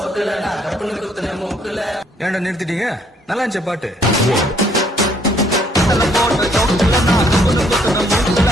ஏன்டா நிறுத்திட்டீங்க? நல்லா இருந்துச்சு பாட்டு.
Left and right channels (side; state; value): both; normal; correlation 0.66